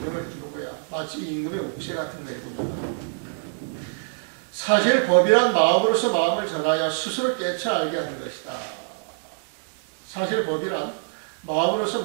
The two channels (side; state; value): left; silent; 62 dB below the other